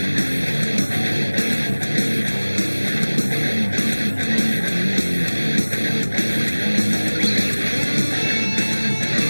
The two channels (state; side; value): inverted; both; correlation -1.00